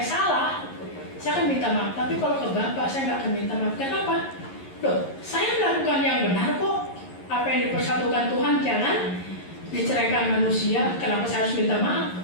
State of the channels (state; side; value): late; right; 11 ms